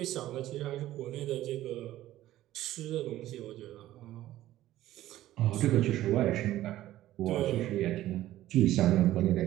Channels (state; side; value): quieter; left; 14.4 dB